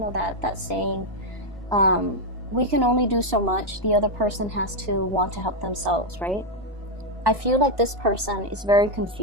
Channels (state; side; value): late; left; 2.7 ms